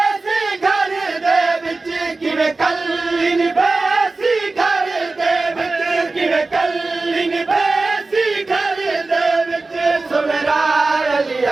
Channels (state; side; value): quieter; left; 3.5 dB